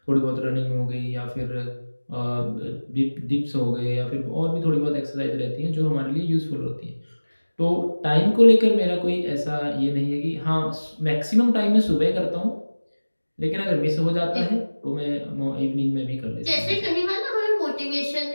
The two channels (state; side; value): inverted; both; correlation -1.00